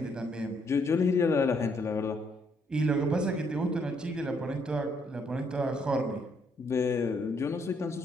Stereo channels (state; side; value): normal; both; correlation 0.71